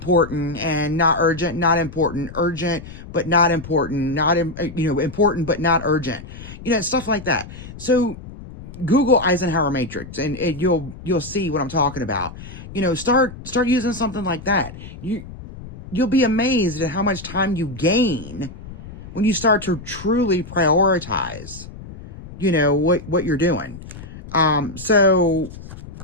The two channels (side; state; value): left; noise; rumble, 14 dB below the sound